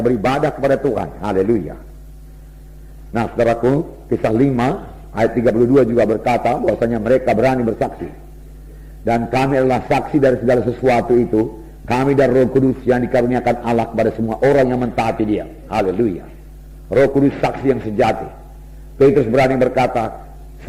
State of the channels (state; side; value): identical; both; correlation 1.00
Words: beribadah kepada Tuhan. Haleluya. Nah, saudaraku, kisah 5 ayat 32 juga berkata bahwasanya mereka berani bersaksi. Dan kami adalah saksi dari segala sesuatu itu. Kami dan Roh Kudus yang dikaruniakan Allah kepada semua orang yang mentaati Dia. Haleluya. Roh Kudus saksi yang sejati. Petrus berani berkata,